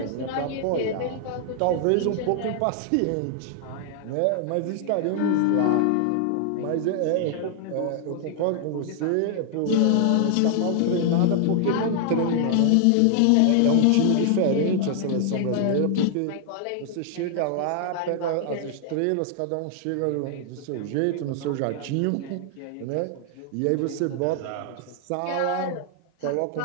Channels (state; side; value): different; both; correlation 0.00